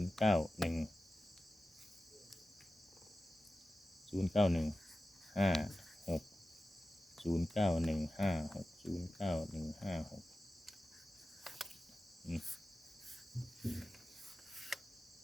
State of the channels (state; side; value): normal; both; correlation 0.94